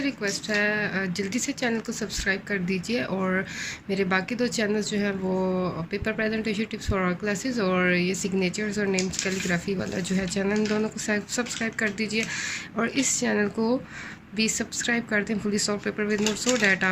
रिक्वेस्ट है जल्दी से चैनल को सब्सक्राइब कर दीजिए। और मेरे बाकी दो चैनल्स जो हैं वो paper presentation tips for all classes और ये सिग्नेचर्स और नेम्स कैलीग्राफी वाला जो है चैनल, इन दोनों को सब्सक्राइब कर दीजिए। और इस चैनल को भी सब्सक्राइब कर दें, fully solve paper with notes, so that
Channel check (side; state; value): both; identical; correlation 1.00